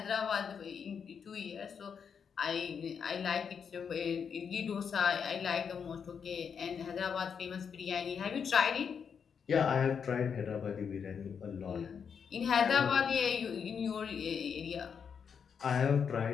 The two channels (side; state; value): right; quieter; 6.8 dB